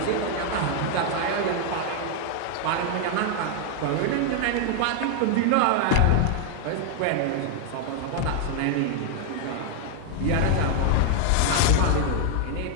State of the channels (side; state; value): both; different; correlation 0.00